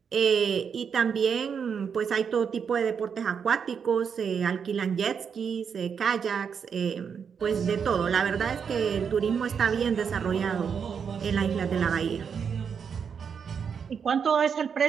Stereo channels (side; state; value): left; quieter; 6.8 dB